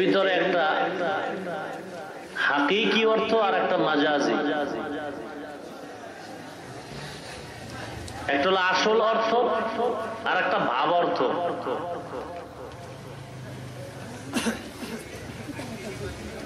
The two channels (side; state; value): both; identical; correlation 1.00